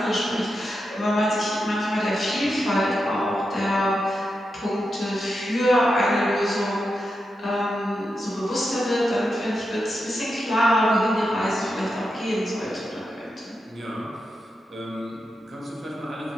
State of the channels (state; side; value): normal; both; correlation 0.87